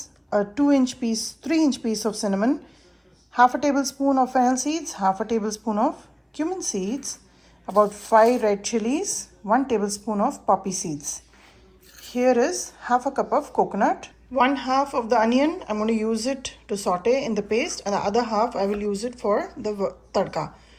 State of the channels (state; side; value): identical; both; correlation 1.00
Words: a 3-inch piece of cinnamon, half a tablespoon of fennel seeds, half a tablespoon of cumin seeds, about 5 red chilies, 1 tablespoon of poppy seeds. Here is half a cup of coconut. 1/2 of the onion, I'm going to use it to saute in the paste, and the other half I will use it for the tadka.